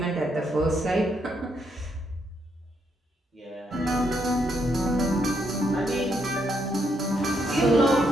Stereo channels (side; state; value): both; normal; correlation 0.76